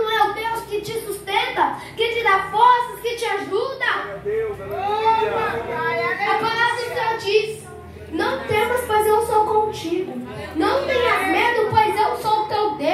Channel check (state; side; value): identical; both; correlation 1.00